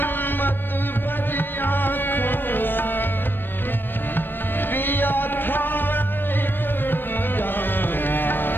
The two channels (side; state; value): right; late; 0.096 ms